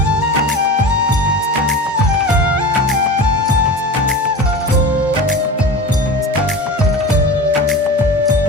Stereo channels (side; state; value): both; normal; correlation 0.30